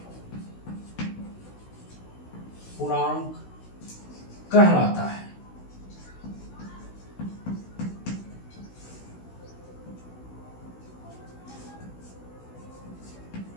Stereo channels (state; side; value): late; right; 16 ms